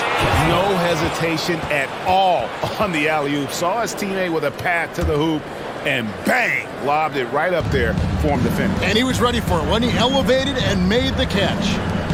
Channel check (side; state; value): both; identical; correlation 1.00